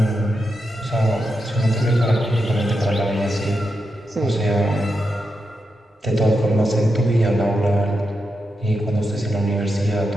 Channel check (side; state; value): both; normal; correlation 0.86